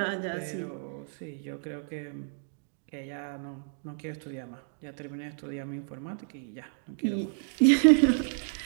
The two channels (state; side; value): silent; left; digital silence